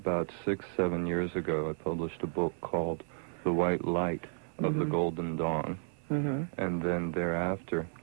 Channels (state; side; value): silent; left; 56 dB below the other